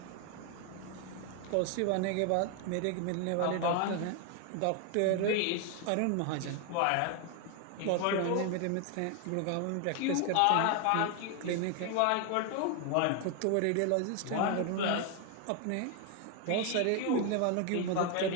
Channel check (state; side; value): different; both; correlation 0.01